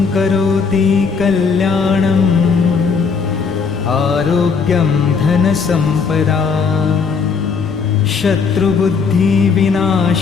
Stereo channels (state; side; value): quieter; right; 5.4 dB